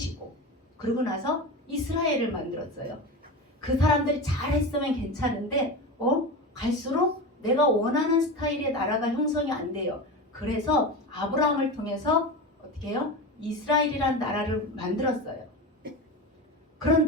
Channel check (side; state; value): both; normal; correlation 0.25